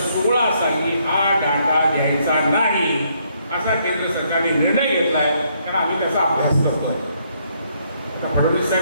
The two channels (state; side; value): inverted; both; correlation -0.72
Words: साली हा डाटा द्यायचा नाही असा केंद्र सरकारने निर्णय घेतलाय, कारण आम्ही त्याचा अभ्यास करतो. फडणवीस